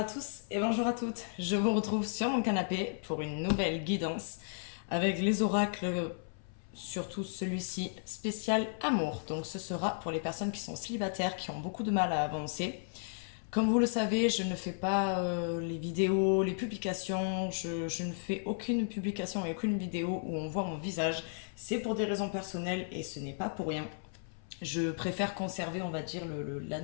tous et bonjour à toutes. Je vous retrouve sur mon canapé pour une nouvelle guidance avec les oracles, surtout celui-ci spécial amour. Donc ce sera pour les personnes qui sont célibataires, qui ont beaucoup de mal à avancer. Comme vous le savez, je ne fais pas les vidéos, les publications, je ne fais aucune publication et aucune vidéo où on voit mon visage. C'est pour des raisons personnelles et ce n'est pas pour rien. Je préfère conserver, on va dire,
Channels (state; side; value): silent; right; 55 dB below the other